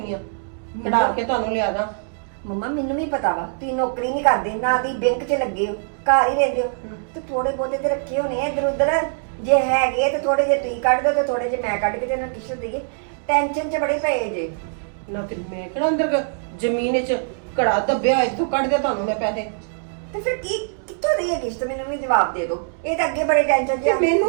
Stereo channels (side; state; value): left; silent; digital silence